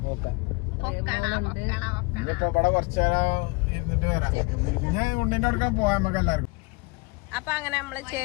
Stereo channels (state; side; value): quieter; right; 27.1 dB